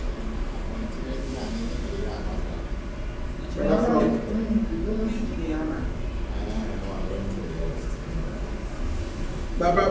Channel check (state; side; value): identical; both; correlation 1.00